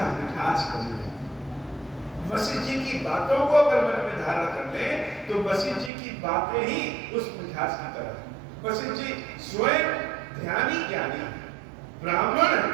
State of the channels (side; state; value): left; drops out; at 5.9 s